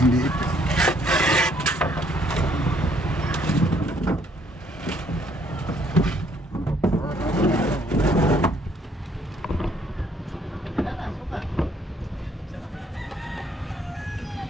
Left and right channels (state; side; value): normal; both; correlation 0.65